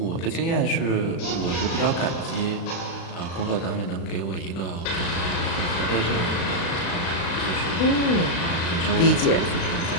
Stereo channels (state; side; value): late; right; 35 ms